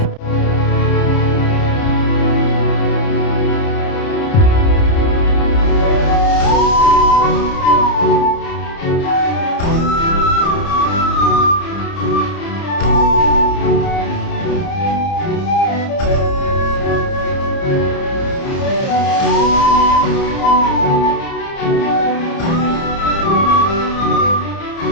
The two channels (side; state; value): right; late; 30 ms